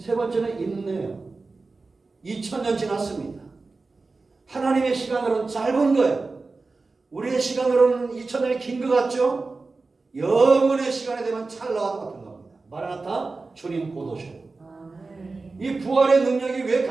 번째는 인내요. 2000년 지났습니다. 하나님의 시간으로는 짧은 거예요. 우리의 시간으로는 2000년이 긴 것 같죠? 영원의 시간이 되면 찰나와 같은 겁니다. 마라나타 주님 곧 오셔요. 이 부활의 능력이 왜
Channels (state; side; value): quieter; left; 3.8 dB